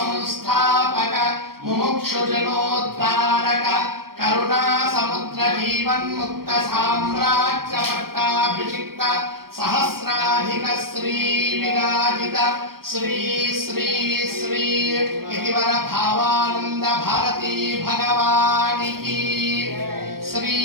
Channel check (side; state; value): left; late; 0.94 ms